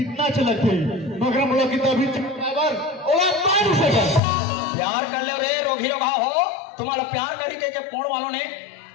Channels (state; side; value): drops out; right; at 4.2 s